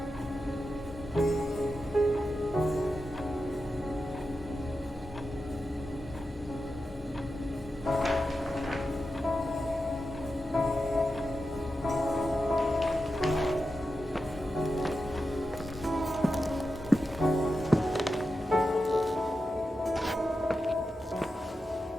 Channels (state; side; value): normal; both; correlation 0.90